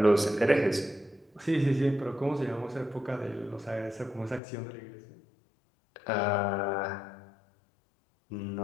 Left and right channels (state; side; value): drops out; right; at 4.4 s